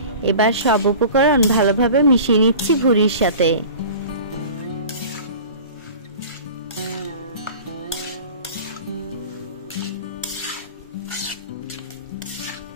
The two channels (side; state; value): both; inverted; correlation -0.40